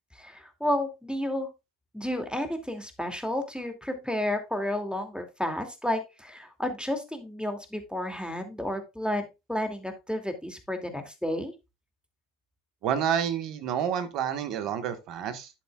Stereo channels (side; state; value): both; normal; correlation 0.66